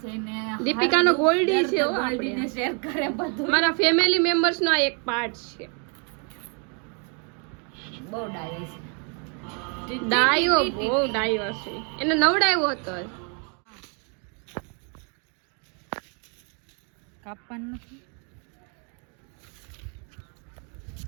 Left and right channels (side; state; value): left; quieter; 38.0 dB